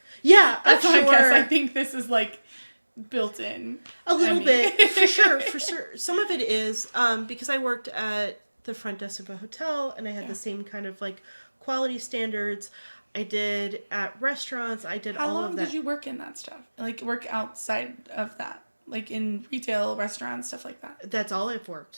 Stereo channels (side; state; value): both; inverted; correlation -1.00